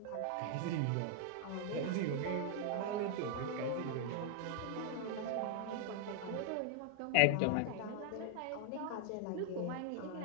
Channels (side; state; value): both; different; correlation 0.00